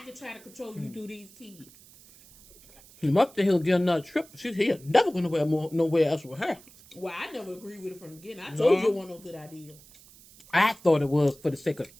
can try to control you through these kids. He must have he'll get another trip. He's never going to nowhere else with her. Well, I never agreed with it from the beginning. I told you it wasn't no good idea. I thought it was for the sake of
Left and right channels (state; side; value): noise; right; hiss, 23 dB below the sound